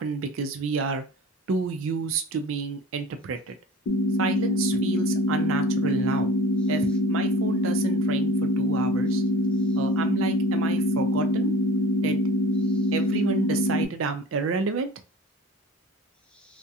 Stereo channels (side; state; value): both; normal; correlation 0.42